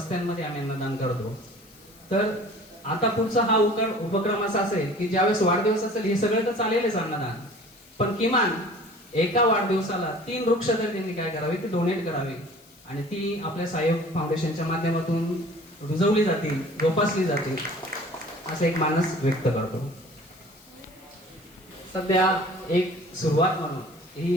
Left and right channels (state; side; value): noise; left; hiss, 27 dB below the sound